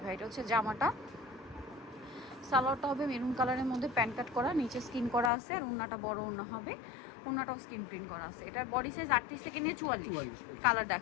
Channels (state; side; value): drops out; right; at 5.3 s